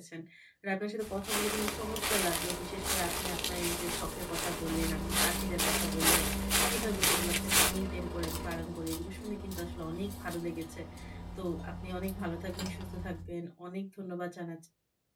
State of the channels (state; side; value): identical; both; correlation 1.00